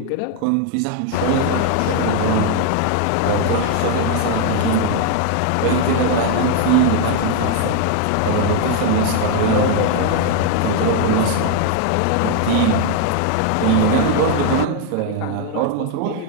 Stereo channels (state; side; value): different; both; correlation 0.00